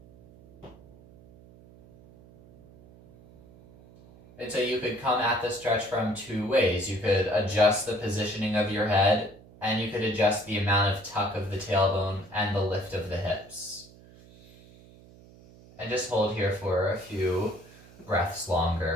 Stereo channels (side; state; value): right; noise; hum, 23 dB below the sound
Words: And so you could come at the stretch from two ways. You could adjust the positioning of your head, and you could adjust the amount of tuck of the tailbone and the lift of the hips. And just hold here for a few breaths